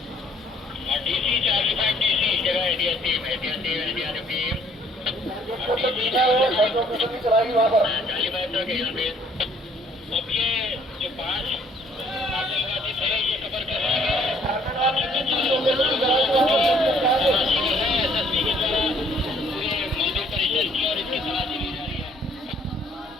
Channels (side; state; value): both; normal; correlation 0.61